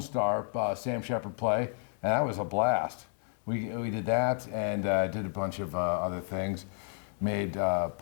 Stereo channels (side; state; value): right; silent; 57 dB below the other